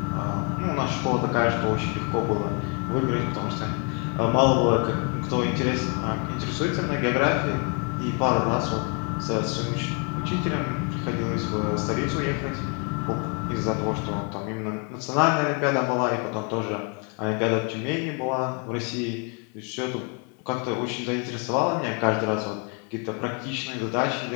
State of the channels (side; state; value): right; quieter; 37.1 dB